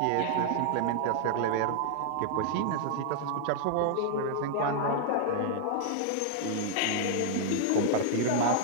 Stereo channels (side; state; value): both; different; correlation 0.00